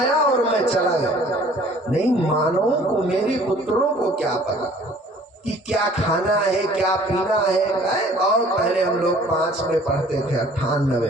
और मैं चला गया। नहीं मानो को मेरे पुत्रों को क्या पता कि क्या खाना है क्या पीना है। और पहले हम लोग 5 में पढ़ते थे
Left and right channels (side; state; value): both; normal; correlation 0.53